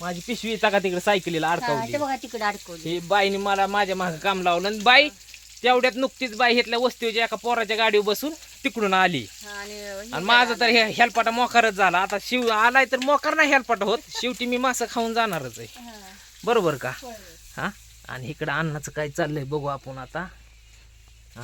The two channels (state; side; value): identical; both; correlation 1.00